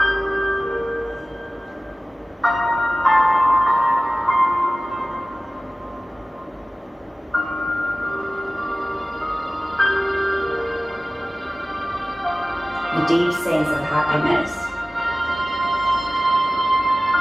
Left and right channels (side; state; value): both; normal; correlation 0.97